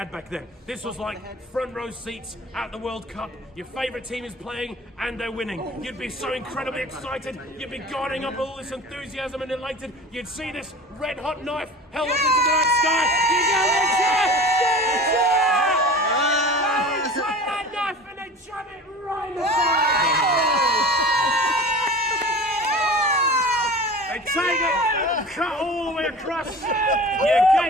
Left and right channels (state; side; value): normal; both; correlation 0.37